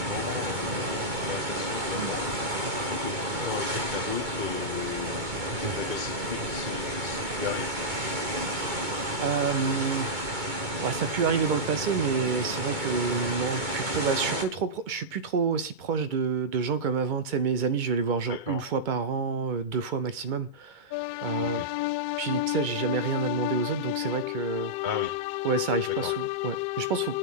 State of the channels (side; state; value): left; late; 2.2 ms